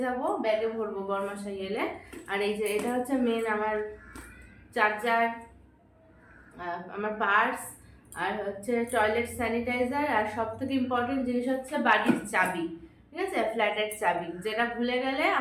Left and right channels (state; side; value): identical; both; correlation 1.00